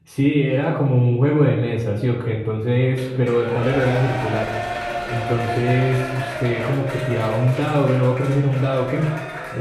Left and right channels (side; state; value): both; identical; correlation 1.00